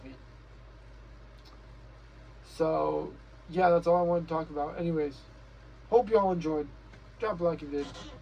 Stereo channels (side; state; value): both; identical; correlation 1.00